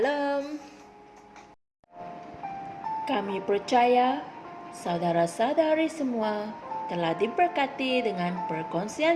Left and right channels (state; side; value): identical; both; correlation 1.00